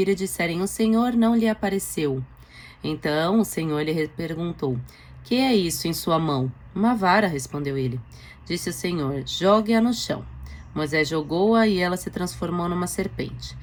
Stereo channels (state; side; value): identical; both; correlation 1.00